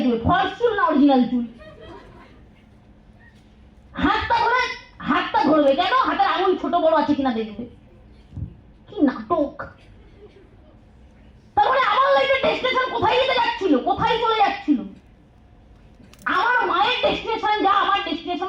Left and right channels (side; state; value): both; identical; correlation 1.00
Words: ফলস চুল না অরিজিনাল চুল। হাতটা ধরবে কেন? হাতের আঙুল ছোট বড় আছে কিনা দেখবে। কি নাটক! তারপরে আমার লাইফের ডেস্টিনেশন কোথায় যেতে যাচ্ছিল, কোথায় চলে যাচ্ছিল? আমার মায়ের ডেস্টিনেশন যা, আমার